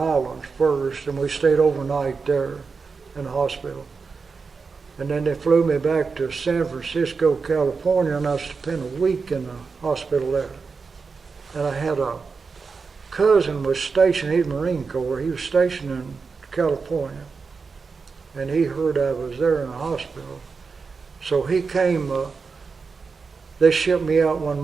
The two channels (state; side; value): quieter; left; 4.9 dB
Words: first, and we stayed overnight there in the hospital. And then they flew me back to San Francisco, California, and I spent a week in the hospital there. And I had a cousin was stationed, he's Marine Corps, he was stationed in California, and he heard I was there in the hospital. So he came, they shipped me out one